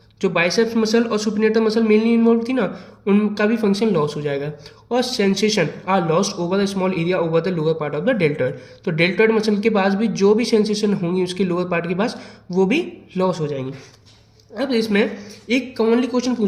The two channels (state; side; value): identical; both; correlation 1.00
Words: जो बाइसेप्स मसल और सुपिनेटर मसल मेनली इन्वॉल्व थी ना, उनका भी फंक्शन लॉस हो जाएगा। और sensation are lost over the small area over the lower part of the deltoid, तो डेल्टॉइड मसल के पास भी जो भी सेंसेशन होंगी उसके लोअर पार्ट के पास वो भी लॉस हो जाएंगी। अब इसमें एक कॉमनली क्वेश्चन